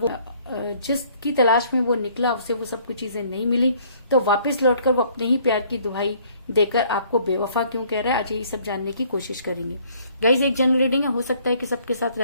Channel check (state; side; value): inverted; both; correlation -0.60